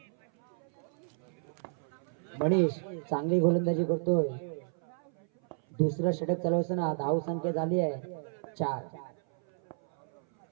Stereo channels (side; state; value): left; silent; 56 dB below the other